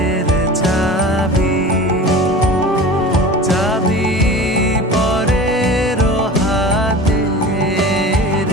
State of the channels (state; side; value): normal; both; correlation 0.36